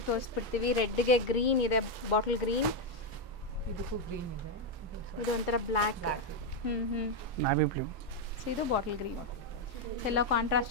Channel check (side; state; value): both; normal; correlation 0.03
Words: ತೋರಿಸ್ಬಿಡ್ತೀವಿ. ರೆಡ್ಗೆ ಗ್ರೀನ್ ಇದೆ, ಬಾಟಲ್ ಗ್ರೀನ್. ಇದು ಒಂಥರ ಬ್ಲ್ಯಾಕ್. Navy blue. ಸೊ ಇದು ಬಾಟಲ್ ಗ್ರೀನ್. ಸೊ ಎಲ್ಲ